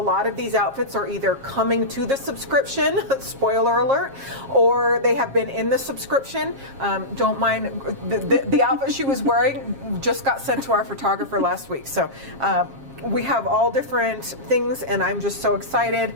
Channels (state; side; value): late; left; 7.4 ms